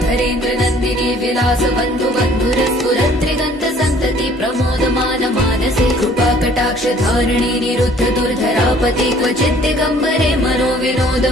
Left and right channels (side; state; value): both; normal; correlation 0.56